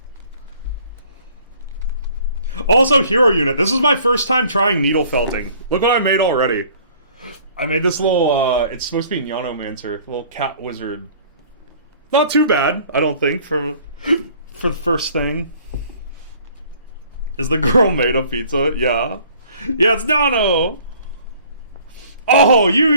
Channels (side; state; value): both; inverted; correlation -0.54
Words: Also, Hero Unit. This is my first time trying needlefelting. Look what I made already. I made this little, it's supposed to be Nyanomancer. Little cat wizard. Not too bad, I don't think, for the first thing. Is the girl made of pizza? Yeah. Yeah, it's Nyano! Oh,